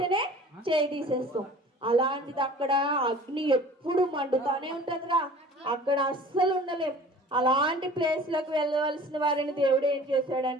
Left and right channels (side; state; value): both; normal; correlation 0.45